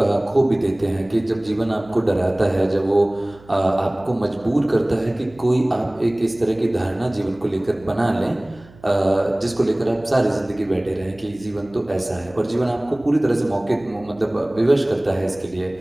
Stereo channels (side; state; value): right; noise; hum, 24 dB below the sound